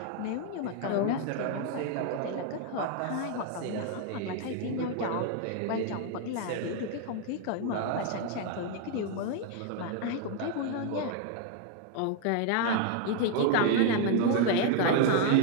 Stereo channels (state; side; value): different; both; correlation 0.00